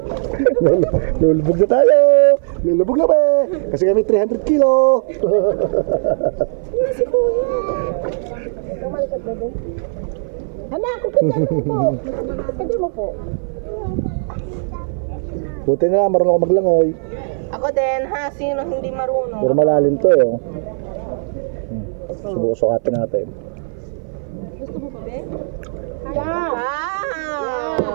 Lulubog na tayo! Lulubog na ba? Kasi kami 300 kilo! Ano si Kuya? Anak, kukita mo po. Kukita mo po. Buti na lang, marunong ako maglangoy. Ako din, ha? Sino hindi marunong? Pero malalim to eh. Oh. Subukan natin. Yeah!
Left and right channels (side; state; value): left; silent; 57 dB below the other